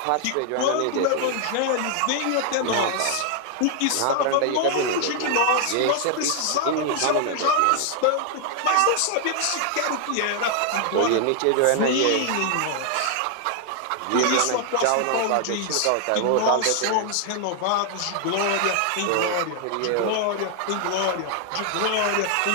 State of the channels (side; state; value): both; different; correlation 0.00